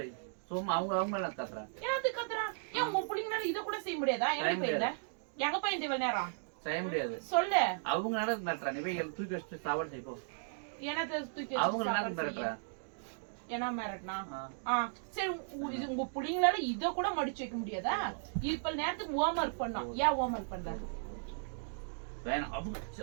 வை. சும்மா அவங்களாம் கத்துறா. ஏன் கத்துறா? ஏன் உங்க புள்ளிங்கனால இத கூட செய்ய முடியாதா? எங்க போயிருந்த? எங்க போயிருந்த இவ்வளவு நேரம்? செய்ய முடியாது. சொல்லு. அவங்க நடத்துறா, நீ போய் தூக்கி வச்சுட்டு சாப்பாடு செய்ப்போ. என்னத்த தூக்கி அவங்க நடத்துறா? என்ன மிரட்டினா? சரி உங்க புள்ளிங்களால இத கூட மடிச்சு வைக்க முடியாதா? இப்ப நேரத்துக்கு ஹோம் ஒர்க் பண்ணோம். ஏன் ஹோம் ஒர்க் பண்ற? வேணாம்.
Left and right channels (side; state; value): left; silent; digital silence